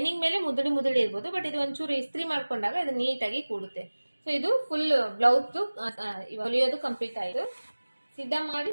ಮೇಲೆ ಮುದುಡಿ ಇರ್ಬೋದು, ಬಟ್ ಇದು ಒಂಚೂರು ಇಸ್ತ್ರಿ ಮಾಡ್ಕೊಂಡಾಗ ಇದು ನೀಟಾಗಿ ಕೂಡುತ್ತೆ. ಸೊ ಇದು ಫುಲ್ ಬ್ಲೌಸ್ ಹೊಲಿಯೋದು ಕಂಪ್ಲೀಟ್ ಆಯ್ತು. ಸಿದ್ಧ ಮಾಡಿ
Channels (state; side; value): inverted; both; correlation -1.00